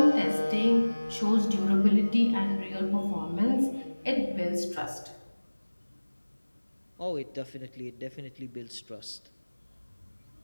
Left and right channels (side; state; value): both; inverted; correlation -1.00